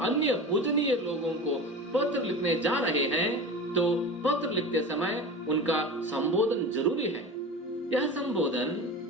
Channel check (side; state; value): both; normal; correlation 0.31